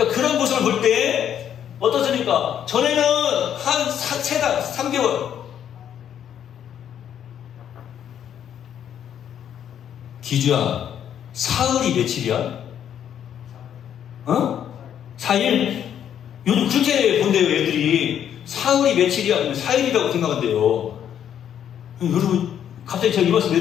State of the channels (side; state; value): right; quieter; 9.5 dB